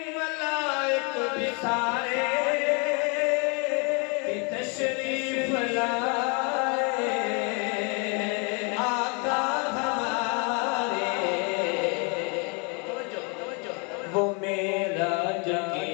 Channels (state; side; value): quieter; right; 34.2 dB